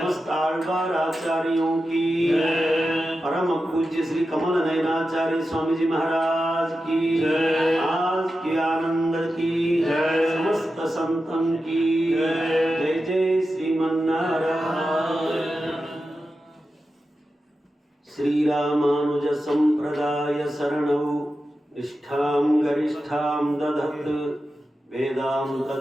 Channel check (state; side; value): normal; both; correlation 0.91